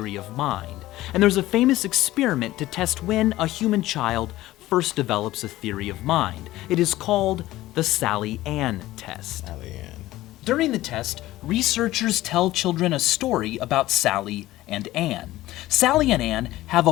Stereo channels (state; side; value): quieter; right; 16.3 dB